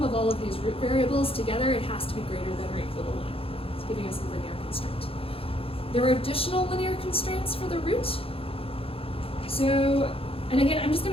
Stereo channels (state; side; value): late; right; 0.27 ms